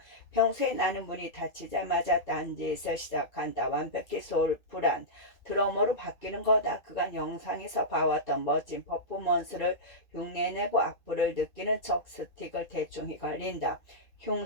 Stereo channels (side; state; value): right; late; 2.2 ms